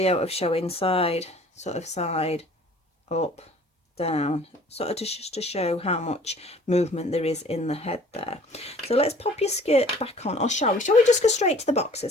of showing side, sort of side, up, down, sort of just to show how much movement there is in the head there. So let's pop your skirt back on, or shall we just go straight to the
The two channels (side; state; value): both; normal; correlation 0.51